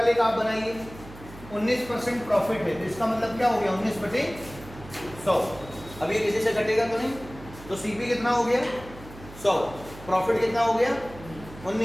का आप बनाइए, 19% प्रॉफिट है, तो इसका मतलब क्या हो गया, 19/100। अब ये किसी से घटेगा तो नहीं, तो CP कितना हो गया, 100, प्रॉफिट कितना हो गया,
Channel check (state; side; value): noise; right; hum, 17 dB below the sound